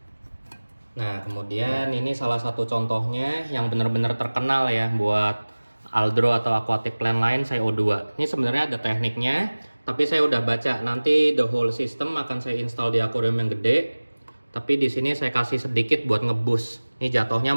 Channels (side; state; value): both; inverted; correlation -1.00